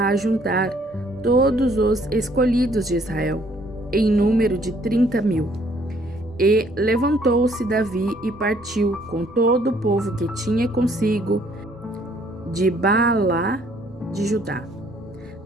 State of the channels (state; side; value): normal; both; correlation 0.63